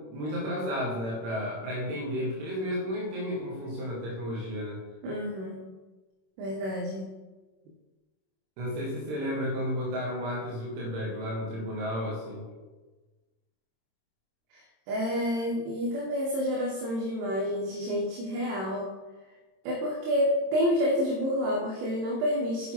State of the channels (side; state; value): left; late; 26 ms